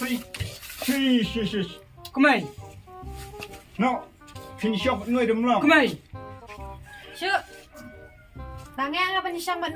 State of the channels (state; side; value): identical; both; correlation 1.00